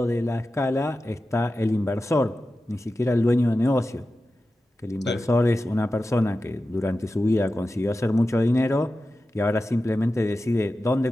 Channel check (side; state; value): both; normal; correlation 0.93